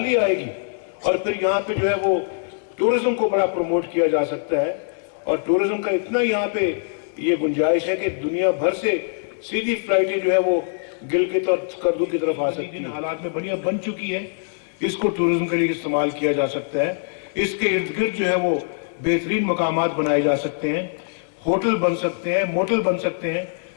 आएगी। और फिर यहाँ पे जो है वो टूरिज्म को बड़ा प्रमोट किया जा सकता है, और टूरिज्म का इतना यहाँ पे ये गुंजाइश है कि दुनिया भर से सीधी फ्लाइटें जो है वो गिलगित और स्कर्दू की तरफ आ सकती हैं। हालात में बढ़िया बन चुकी है, इसको टूरिज्म के लिए इस्तेमाल किया जा सकता है। इसके इर्द गिर्द जो है वो बेहतरीन मकामात बनाए जा सकते हैं, होटल बन सकते हैं, मोटल बन सकते हैं,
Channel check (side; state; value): right; silent; digital silence